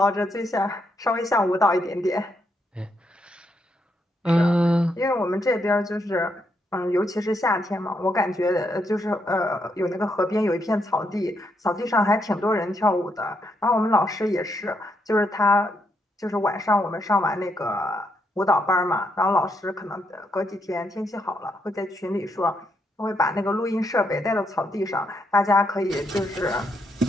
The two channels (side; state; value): both; normal; correlation 0.78